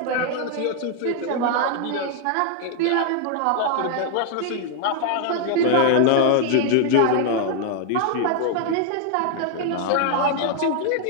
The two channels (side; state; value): both; different; correlation 0.00